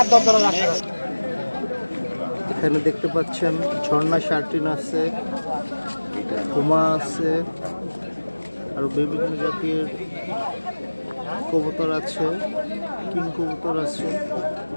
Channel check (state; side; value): inverted; both; correlation -1.00